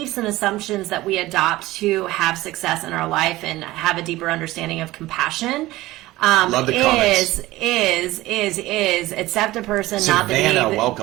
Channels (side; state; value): left; quieter; 17.8 dB